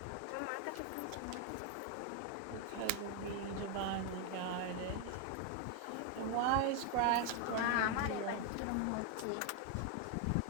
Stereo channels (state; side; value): different; both; correlation 0.01